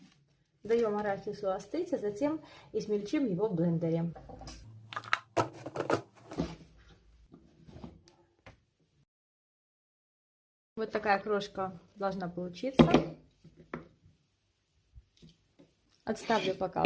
Даем арахису остыть, а затем измельчим его в блендере. Вот такая крошка должна получиться. Отставлю пока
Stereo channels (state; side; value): identical; both; correlation 1.00